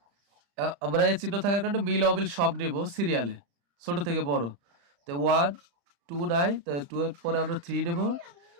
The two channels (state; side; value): late; left; 35 ms